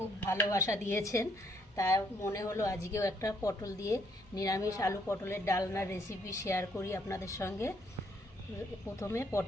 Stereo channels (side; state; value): both; normal; correlation 0.69